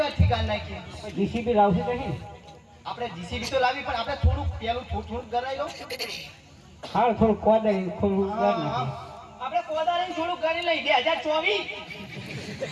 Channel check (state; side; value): identical; both; correlation 1.00